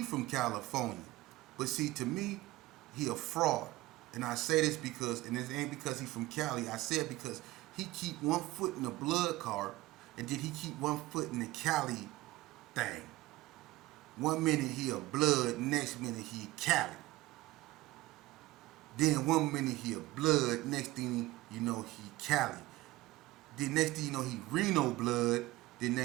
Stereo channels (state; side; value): quieter; left; 18.6 dB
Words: from California. But see, to me, he a fraud. And I say this because, and it ain't because he from Cali. I say it because he keep one foot in the blood car, and then he keep one foot in the Cali thing. One minute he a blood, next minute he Cali. Then one minute he a blood, next thing he Cali. Then next thing you know he Reno blood, then